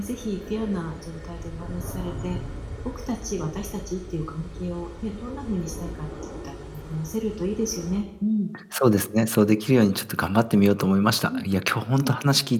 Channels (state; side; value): identical; both; correlation 1.00